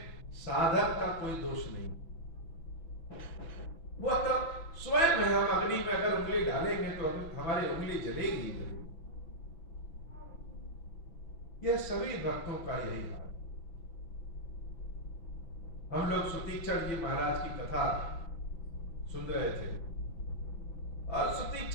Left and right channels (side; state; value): right; late; 6.0 ms